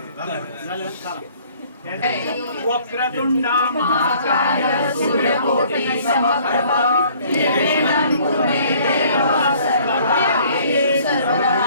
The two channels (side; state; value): both; inverted; correlation -0.57